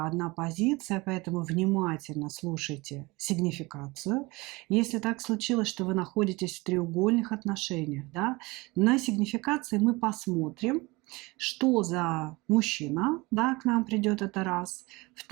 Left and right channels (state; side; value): quieter; left; 23.6 dB